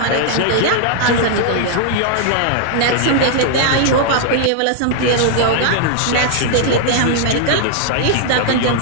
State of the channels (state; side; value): different; both; correlation 0.00